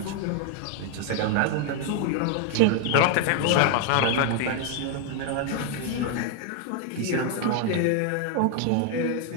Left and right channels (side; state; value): both; different; correlation 0.01